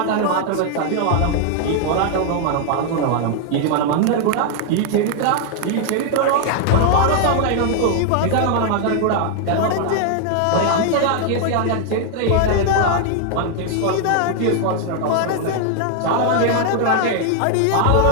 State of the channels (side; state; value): both; different; correlation 0.00